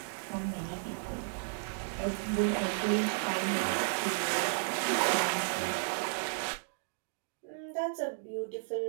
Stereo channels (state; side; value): silent; left; digital silence